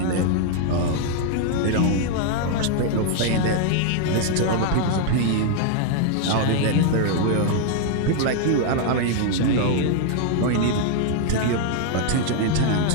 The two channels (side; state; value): both; different; correlation 0.00